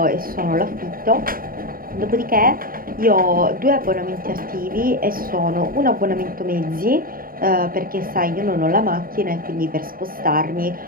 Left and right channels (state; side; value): late; left; 0.42 ms